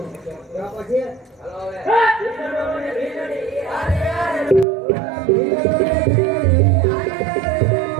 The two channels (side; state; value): left; drops out; at 4.7 s